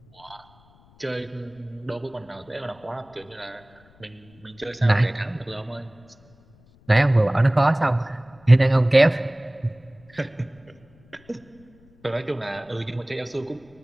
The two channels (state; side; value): noise; left; rumble, 29 dB below the sound